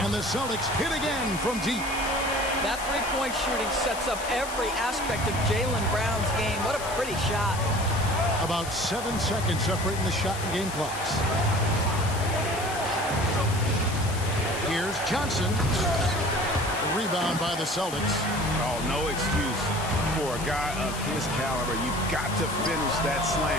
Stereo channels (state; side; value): noise; left; hiss, 11 dB below the sound